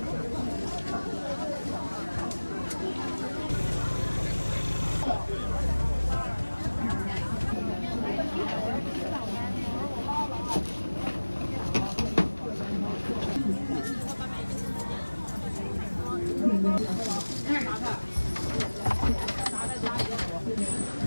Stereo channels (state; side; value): inverted; both; correlation -1.00